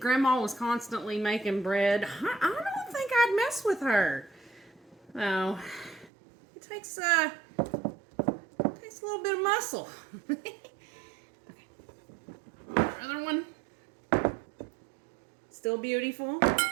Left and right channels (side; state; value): left; drops out; at 6.1 s